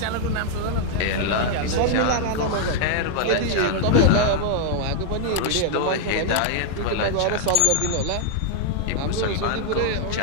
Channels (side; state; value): both; different; correlation -0.01